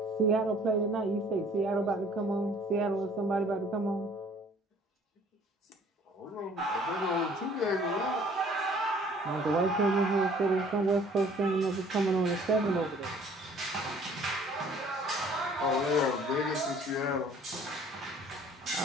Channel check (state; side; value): normal; both; correlation 0.55